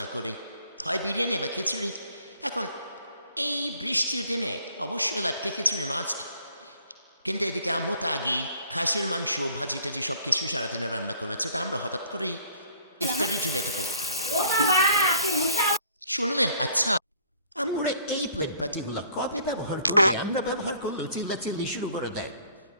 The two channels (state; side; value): inverted; both; correlation -0.58